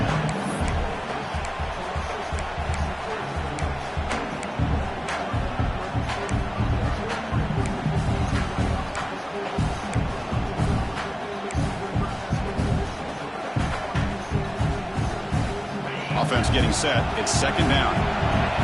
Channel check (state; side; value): identical; both; correlation 1.00